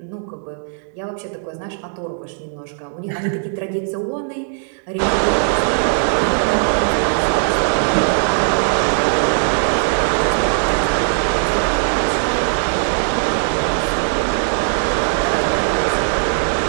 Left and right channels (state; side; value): silent; left; digital silence